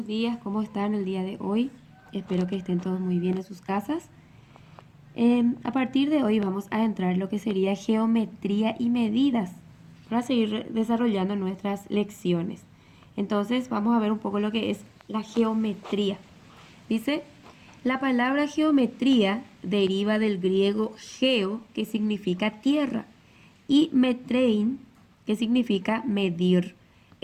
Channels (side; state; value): both; identical; correlation 1.00